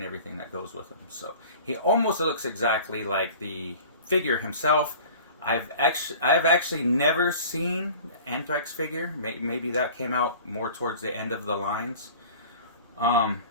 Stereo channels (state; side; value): inverted; both; correlation -0.43